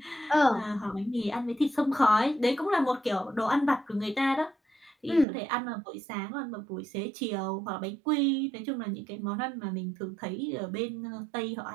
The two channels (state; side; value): drops out; left; at 5.2 s